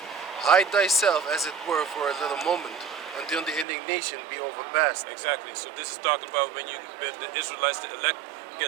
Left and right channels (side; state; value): left; drops out; at 3.7 s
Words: Hide thyself, as it were, for a little moment, until the indignation be overpast. Exactly. So this is talking about when the Israelites, the elect,